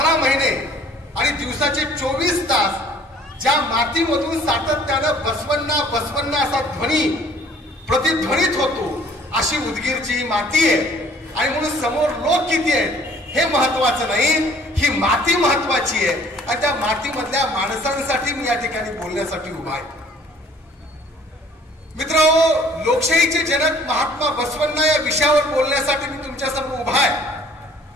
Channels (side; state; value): both; normal; correlation 0.55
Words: महिने आणि दिवसाचे 24 तास ज्या मातीमधून सातत्यानं बसवण्णा बसवण्णा असा ध्वनी प्रतिध्वनित होतो अशी उदगीरची ही माती आहे. आणि म्हणून समोर लोक किती आहेत हे महत्वाचं नाही, ही माती महत्वाची आहे. आणि त्या मातीमधल्या माणसांसाठी मी या ठिकाणी बोलण्यासाठी उभा आहे. मित्रांनो, लोकशाहीचे जनक महात्मा बसवण्णा या विषयावर बोलण्यासाठी मी तुमच्या समोर उभा आहे.